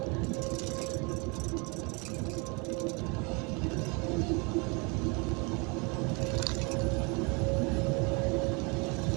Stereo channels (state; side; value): quieter; left; 30.8 dB